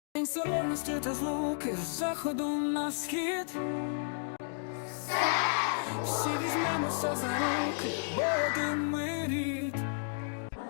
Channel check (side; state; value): right; silent; digital silence